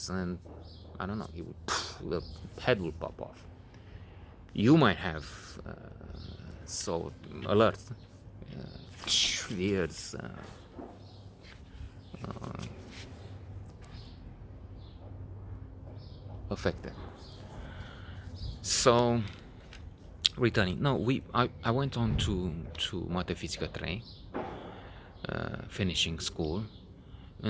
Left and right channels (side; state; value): both; identical; correlation 1.00